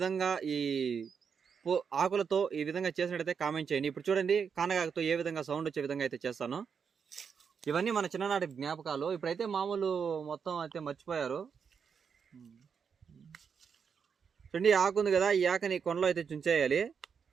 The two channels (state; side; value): quieter; left; 6.5 dB